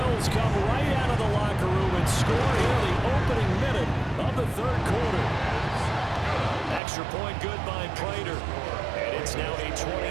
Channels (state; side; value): drops out; left; at 6.8 s